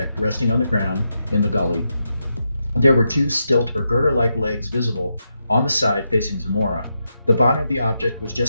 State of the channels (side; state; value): both; inverted; correlation -0.85